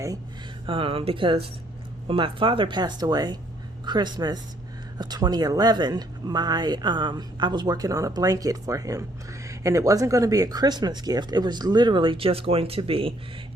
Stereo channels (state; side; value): normal; both; correlation 0.66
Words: because when my father passed away, Christmas of 2011, I was working on a blanket for him. And it wasn't going to be a Christmas gift. It was literally just going to be